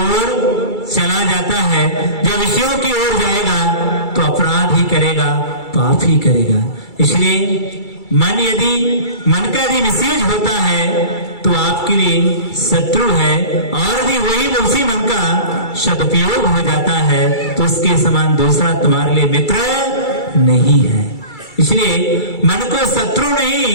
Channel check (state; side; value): late; right; 2.3 ms